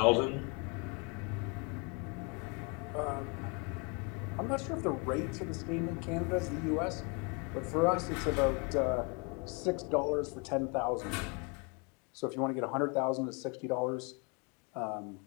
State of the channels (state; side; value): quieter; right; 32.7 dB